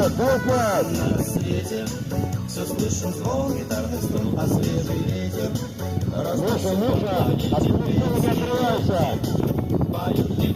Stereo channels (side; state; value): both; identical; correlation 1.00